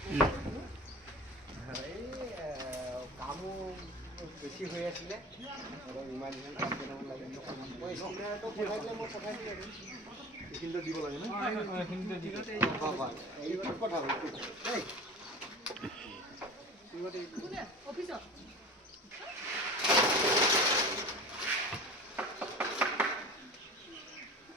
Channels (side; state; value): both; normal; correlation 0.35